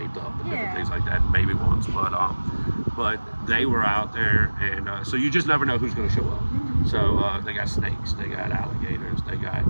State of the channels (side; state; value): both; inverted; correlation -1.00